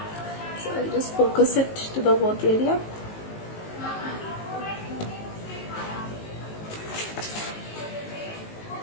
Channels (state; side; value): late; right; 19 ms